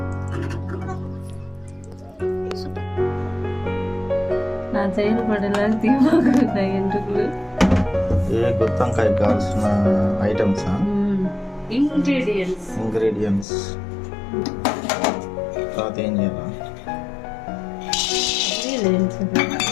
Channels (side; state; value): right; drops out; at 13.5 s